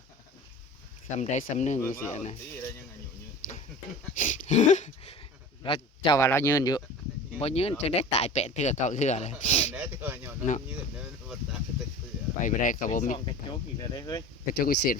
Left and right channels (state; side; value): normal; both; correlation 0.37